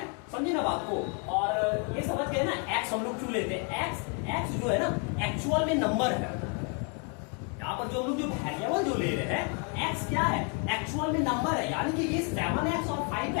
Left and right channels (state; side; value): quieter; right; 38.2 dB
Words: समझे ना बात को। और ये समझ गए ना, एक्स हम लोग क्यों लेते हैं। एक्स जो है ना एक्चुअल में नंबर है। यहाँ पर जो हम लोग जो वेरिएबल जो ले रहे हैं, एक्स क्या है, एक्चुअल में नंबर है। यानी कि ये 7x और